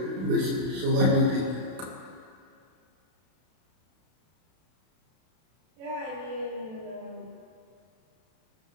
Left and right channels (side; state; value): left; late; 32 ms